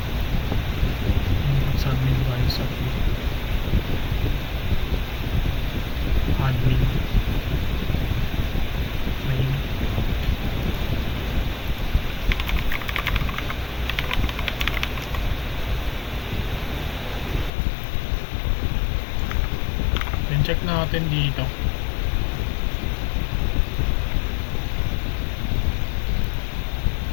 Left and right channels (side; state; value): right; drops out; at 17.5 s